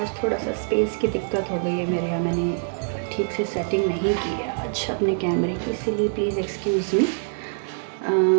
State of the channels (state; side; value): silent; left; digital silence